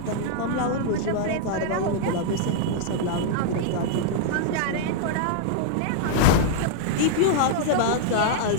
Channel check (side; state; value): both; different; correlation -0.01